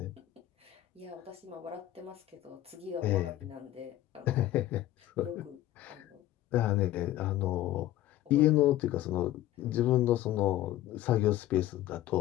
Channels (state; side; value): quieter; right; 14.2 dB